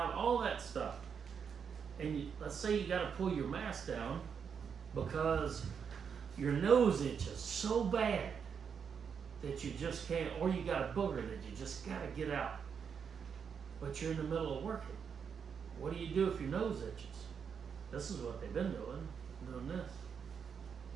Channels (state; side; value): quieter; left; 6.8 dB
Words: all that stuff. And let's say you got to pull your mask down because your nose itches so bad that you just can't, or you got a booger that you just got to get out. But you're in the middle of working. What do you do if your nose itches? This is what they've been doing this.